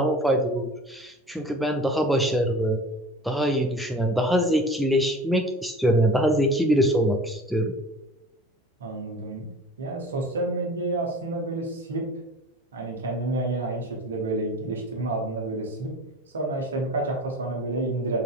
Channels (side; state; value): both; normal; correlation 0.40